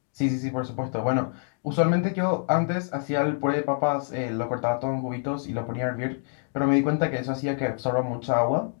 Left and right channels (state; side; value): silent; right; 61 dB below the other